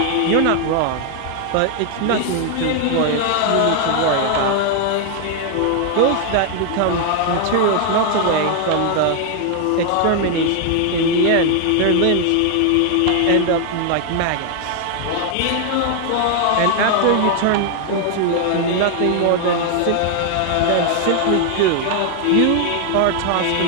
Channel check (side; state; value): both; different; correlation 0.00